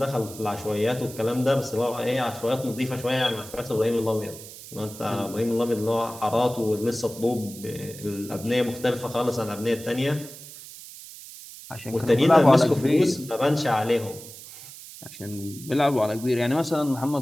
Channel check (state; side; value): noise; right; hiss, 15 dB below the sound